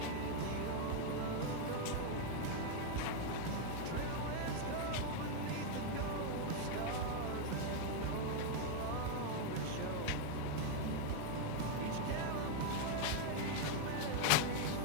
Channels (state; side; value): different; both; correlation 0.00